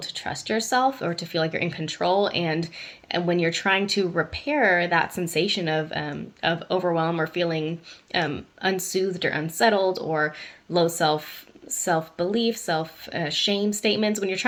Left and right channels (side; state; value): both; identical; correlation 1.00